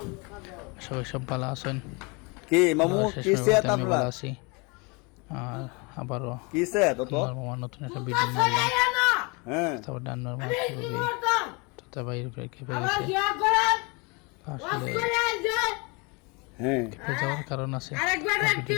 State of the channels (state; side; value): quieter; right; 29.5 dB